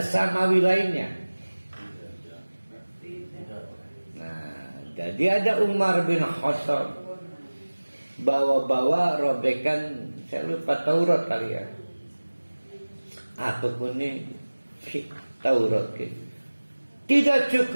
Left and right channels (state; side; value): inverted; both; correlation -1.00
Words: Samawi lainnya. Nah jadi ada Umar bin Khattab bawa-bawa robekan, saya lupa Taurat kali ya. Apapun ini Taurat gitu. Tidak